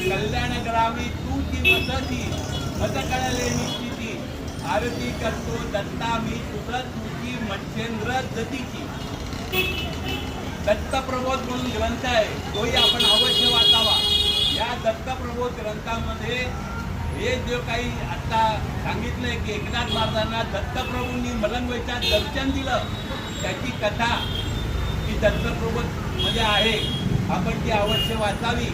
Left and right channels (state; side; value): identical; both; correlation 1.00